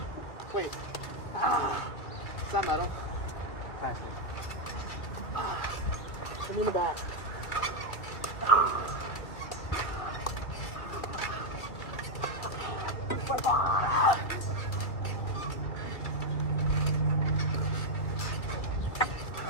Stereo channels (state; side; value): late; right; 2.2 ms